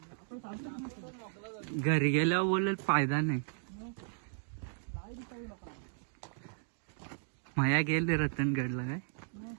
घरी गेल्यावर बोलेल फायदा नाही. माया गेले रतनगडला काय.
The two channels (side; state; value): left; silent; digital silence